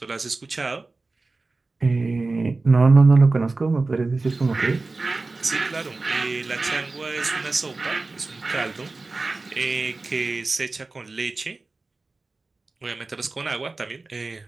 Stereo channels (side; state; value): left; quieter; 3.5 dB